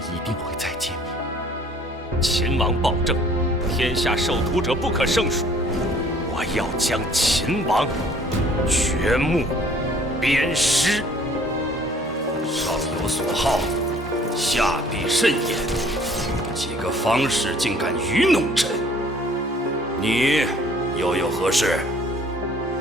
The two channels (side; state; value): both; normal; correlation 0.55